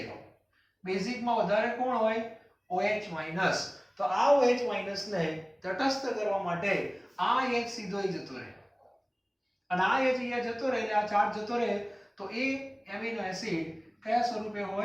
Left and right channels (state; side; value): identical; both; correlation 1.00